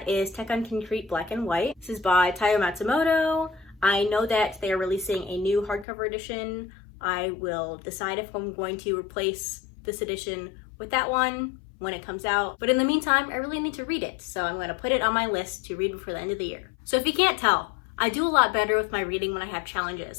is Tekken Concrete Black and White. This is by Taiyo Matsumoto. I know that they are releasing a new hardcover edition. I will decide if I'm going to replace this edition with that one when it comes out. But in the meantime, I really need to read it. So I'm going to put it on my list to read before the end of the year. So if you can't tell, I do a lot better with my reading when I have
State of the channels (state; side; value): drops out; right; at 5.9 s